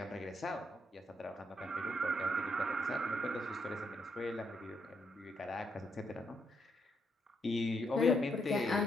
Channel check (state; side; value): normal; both; correlation 0.77